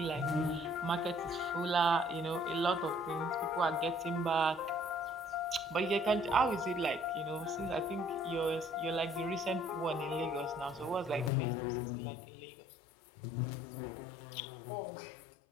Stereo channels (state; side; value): drops out; right; at 11.3 s